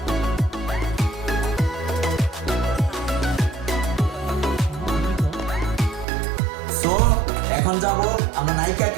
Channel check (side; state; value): left; drops out; at 6.1 s